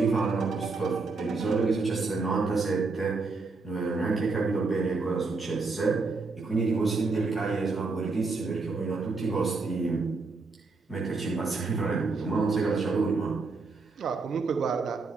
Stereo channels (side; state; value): left; quieter; 4.0 dB